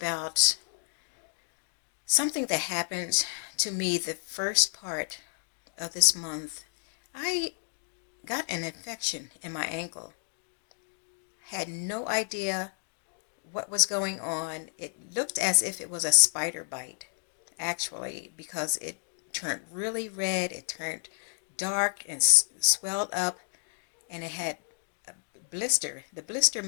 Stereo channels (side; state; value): right; silent; 57 dB below the other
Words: something that happened to me the first part of this month. I got an infection in my ankle. Had no idea what was going on. It looked as if it was a spider bite, actually, because it turned really red. It turned dark and swelled up, and it had a blister. The blister